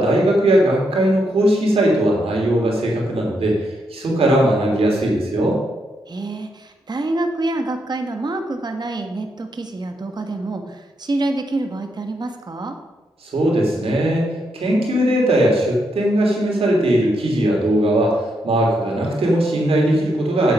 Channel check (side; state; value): both; normal; correlation 0.80